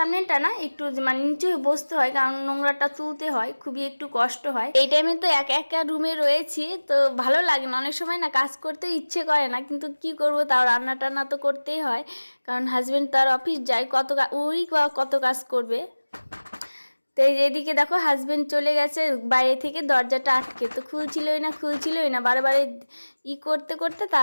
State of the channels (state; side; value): inverted; both; correlation -1.00